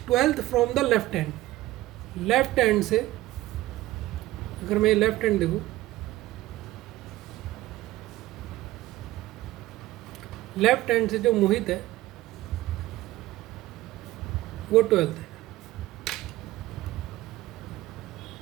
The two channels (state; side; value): quieter; left; 16.7 dB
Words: 12th from the left hand, left hand से अगर मैं लेफ्ट हैंड देखूँ, लेफ्ट हैंड से जो मोहित है वो 12th है।